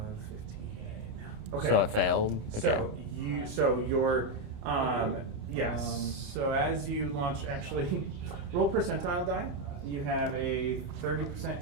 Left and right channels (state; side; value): late; left; 29 ms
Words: 15. Okay. So it failed. Okay. So your so as you launch, actually, roll percentile die. You have a